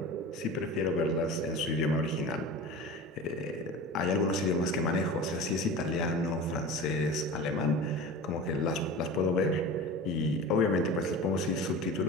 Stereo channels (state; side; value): normal; both; correlation 0.34